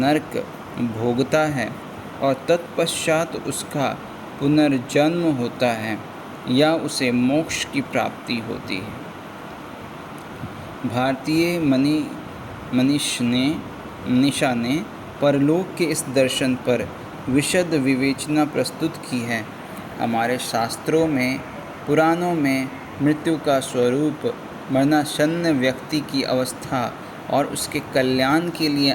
भोगता है और तत्पश्चात उसका पुनर्जन्म होता है या उसे मोक्ष की प्राप्ति होती है। भारतीय मनीषा ने परलोक के इस दर्शन पर विशद विवेचना प्रस्तुत की है। हमारे शास्त्रों में पुराणों में मृत्यु का स्वरूप मरणासन्न व्यक्ति की अवस्था और उसके कल्याण के लिए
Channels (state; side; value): identical; both; correlation 1.00